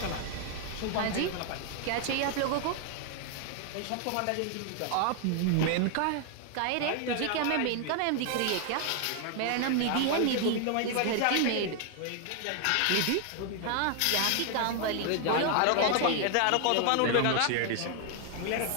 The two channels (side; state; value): both; different; correlation 0.00